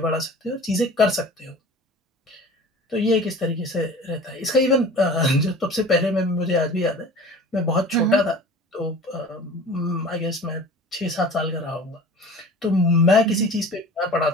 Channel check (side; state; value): both; normal; correlation 0.41